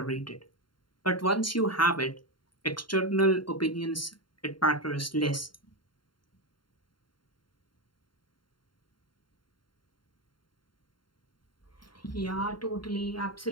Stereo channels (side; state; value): right; late; 0.72 ms